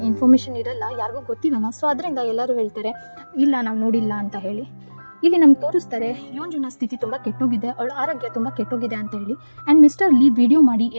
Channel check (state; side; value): inverted; both; correlation -1.00